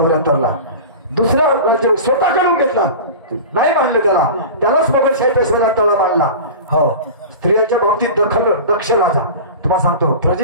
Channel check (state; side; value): inverted; both; correlation -0.33